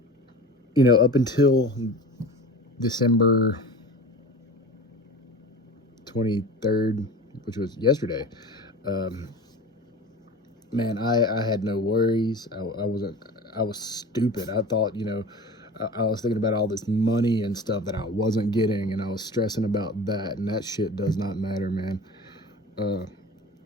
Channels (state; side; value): normal; both; correlation 0.36